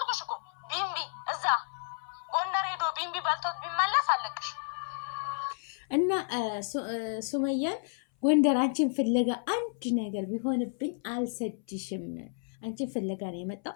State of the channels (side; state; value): right; silent; 57 dB below the other